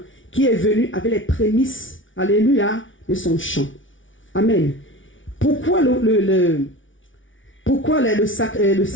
qui est venu avec les prémices, alléluia, de son champ. Amen. Pourquoi le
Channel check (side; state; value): right; late; 0.56 ms